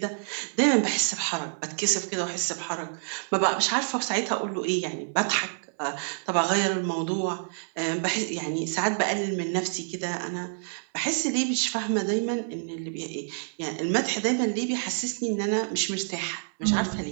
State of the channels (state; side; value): silent; left; 60 dB below the other